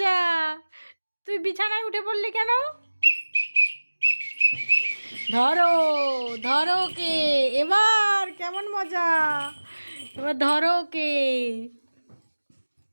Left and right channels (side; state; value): both; inverted; correlation -1.00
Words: তুই বিছানায় উঠে পড়লি কেন? ধরো ধরো কে, এবার কেমন মজা, এবার ধরো কে।